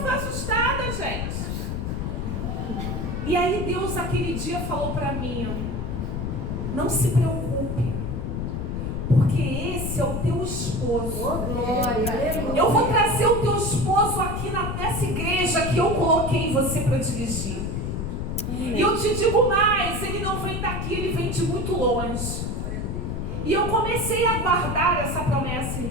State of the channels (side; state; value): left; noise; rumble, 3 dB below the sound